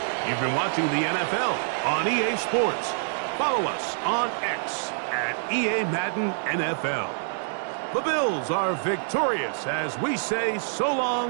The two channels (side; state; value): left; silent; digital silence